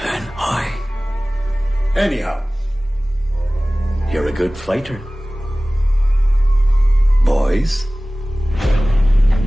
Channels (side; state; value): both; normal; correlation 0.98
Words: and I? Anyhow, you're a good fighter. Boys,